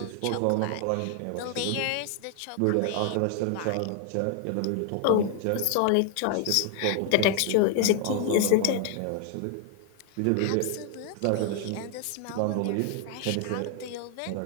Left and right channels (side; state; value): both; different; correlation 0.00